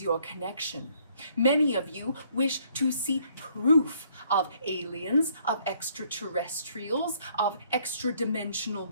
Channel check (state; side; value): inverted; both; correlation -0.65